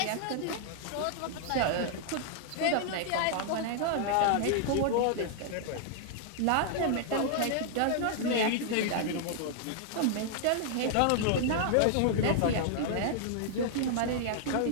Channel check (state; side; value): different; both; correlation 0.00